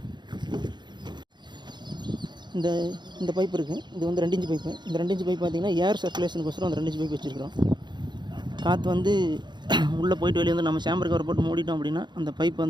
இந்த பைப் இருக்குது. இது வந்து 2 inch பைப்பு. இந்த 2 inch பைப் பார்த்திங்கன்னா ஏர் சர்க்குலேஷனுக்கோசரம் அந்த 2 inch பைப் வச்சுருக்கிறோம். காற்று வந்து உள்ளே போயிட்டு வெளியே வந்து நம்ம சாம்பர் கவர் போட்டு மூடிட்டோம் அப்படின்னா அந்த பைப்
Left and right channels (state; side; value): late; left; 0.21 ms